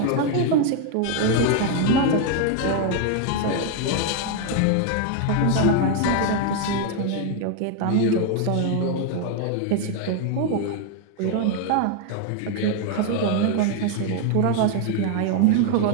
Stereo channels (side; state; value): both; different; correlation 0.01